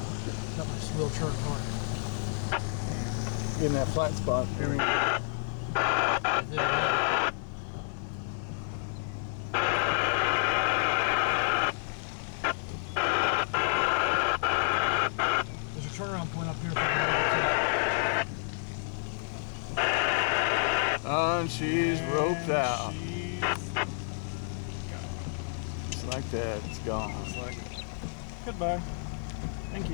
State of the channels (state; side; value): silent; right; 58 dB below the other